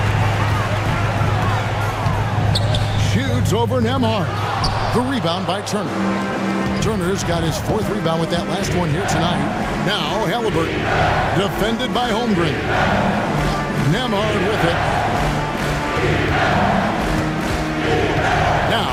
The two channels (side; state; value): both; identical; correlation 1.00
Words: Shoots over Nembhard. The rebound by Turner. Turner's got his 4th rebound with that last one here tonight. Now Haliburton, defended by Holmgren. Nemhard with it. Now